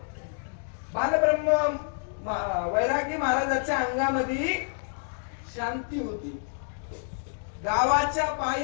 बालब्रह्म वैरागी महाराजाच्या अंगामध्ये शांती होती. गावाच्या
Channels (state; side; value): silent; right; digital silence